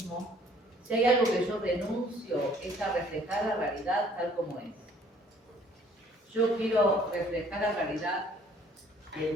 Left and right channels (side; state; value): both; normal; correlation 0.59